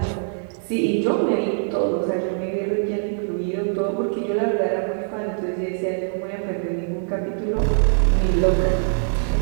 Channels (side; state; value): left; silent; 64 dB below the other